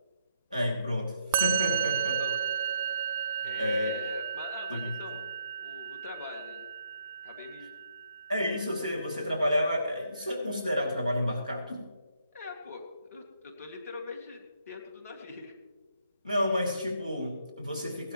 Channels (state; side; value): inverted; both; correlation -0.74